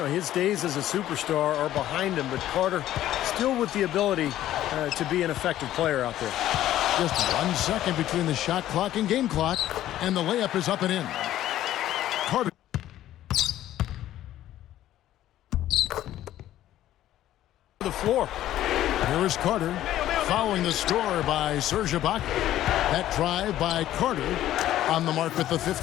his days as a superstar are behind him, but Carter still with the ability to be an effective player out there. Just 1 second between the shot clock and game clock, and the layup is up and in. Carter. The floor. Here is Carter, following the score by Serge Ibaka. That drive by Carter on the mark with the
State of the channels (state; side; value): quieter; right; 13.1 dB